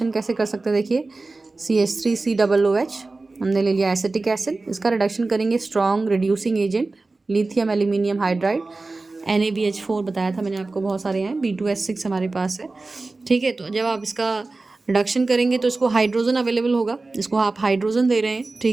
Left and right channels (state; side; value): quieter; left; 3.5 dB